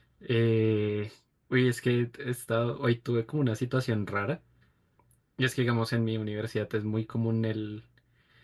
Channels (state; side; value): identical; both; correlation 1.00